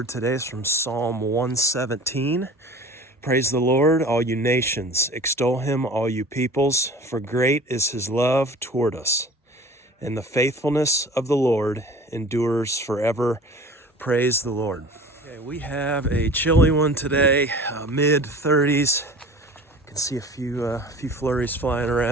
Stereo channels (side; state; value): both; normal; correlation 0.43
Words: today is from Psalm 117. Praise the Lord, all you nations. Extol him, all you peoples, for great is his love toward us. And the faithfulness of the Lord endures forever. Praise the Lord. Okay, we have a chilly one today, mid 30s. You can see a few flurries flying